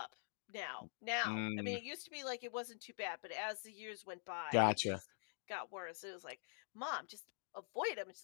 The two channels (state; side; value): silent; right; digital silence